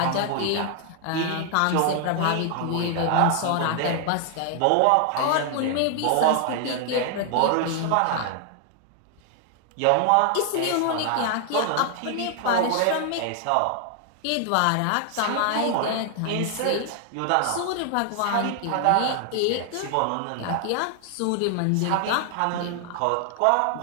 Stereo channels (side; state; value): both; different; correlation 0.00